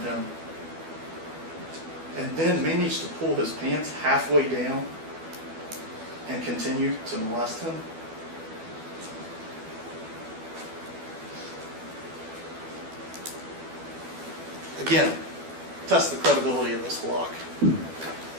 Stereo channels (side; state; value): left; late; 12 ms